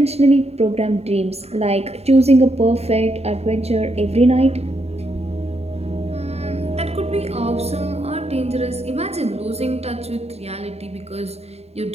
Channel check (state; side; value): late; left; 0.30 ms